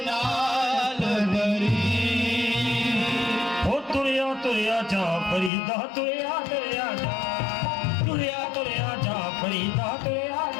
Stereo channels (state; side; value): drops out; right; at 5.5 s